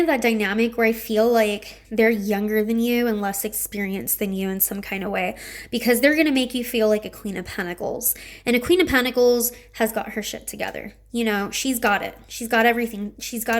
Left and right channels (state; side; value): identical; both; correlation 1.00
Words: that dynamic where I feel like they're younger than you and less experienced than you in some kind of way, because they're going to make you feel like a Queen of Pentacles. And a Queen of Pentacles has got her shit together. You know, she's got it. She's got everything. She's